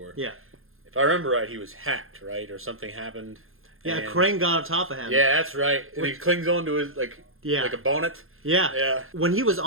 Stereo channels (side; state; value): left; late; 0.61 ms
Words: Yeah. If I remember right, he was hacked, right? Or something happened. Yeah, a crane got on top of him. Yeah, that's right. And he clings onto his, like a bonnet. Yeah. Yeah. When he was